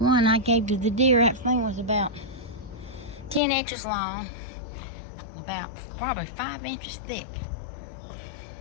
I gave to the deer, that thing was about 10 inches long and about probably 5 inches thick.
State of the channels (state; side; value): drops out; right; at 3.4 s